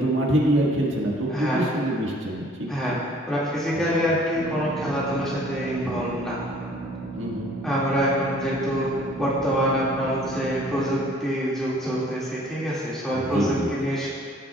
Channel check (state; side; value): normal; both; correlation 0.56